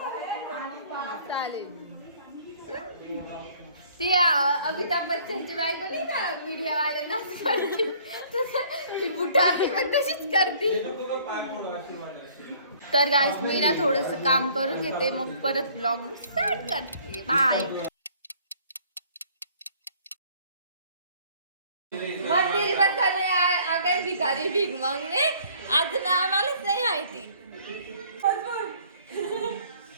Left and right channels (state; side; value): inverted; both; correlation -0.57